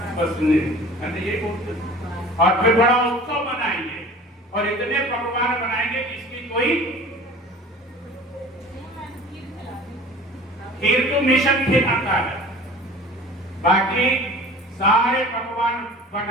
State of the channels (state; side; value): normal; both; correlation 0.42